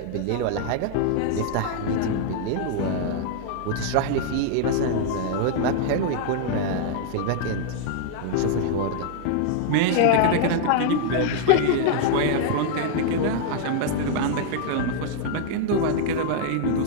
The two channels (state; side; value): different; both; correlation -0.01